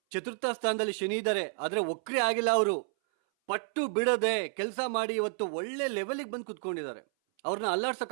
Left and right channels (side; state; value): left; silent; 57 dB below the other